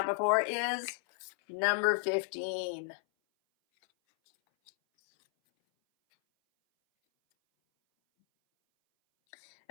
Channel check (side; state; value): right; silent; 56 dB below the other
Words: before, is number 15.